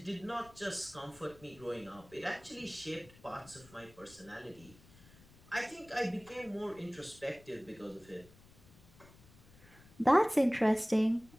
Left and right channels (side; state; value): left; noise; rumble, 24 dB below the sound